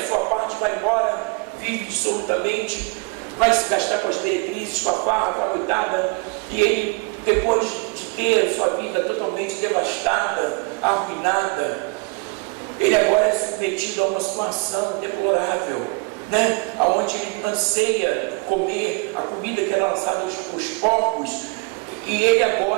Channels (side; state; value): left; quieter; 30.6 dB